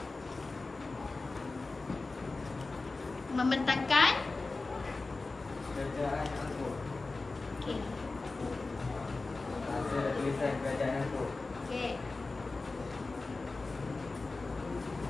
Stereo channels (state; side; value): quieter; right; 3.6 dB